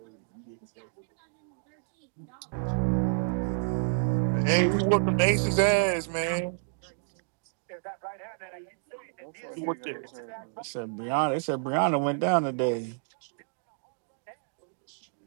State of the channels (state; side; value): silent; left; digital silence